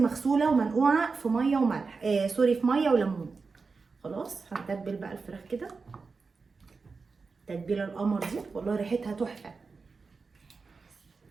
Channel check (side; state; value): left; quieter; 4.5 dB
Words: ومنقوعه في ميه وملح. في ميه وليمون. خلاص هنتبل بقى الفراخ كده تتبيله القمر دي. والله ريحتها تحفه.